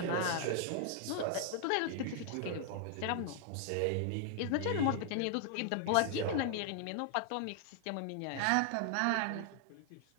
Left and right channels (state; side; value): different; both; correlation 0.00